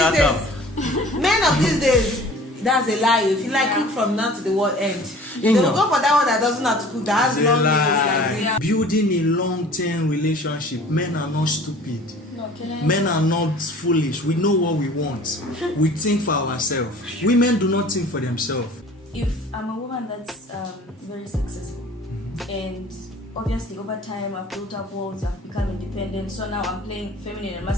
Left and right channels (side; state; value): both; normal; correlation 0.47